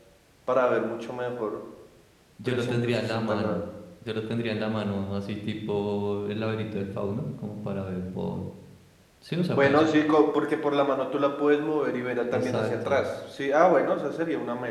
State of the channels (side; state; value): both; identical; correlation 1.00